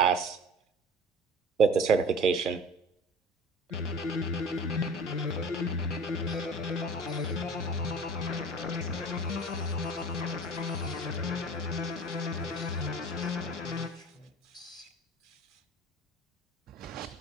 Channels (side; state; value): both; normal; correlation 0.41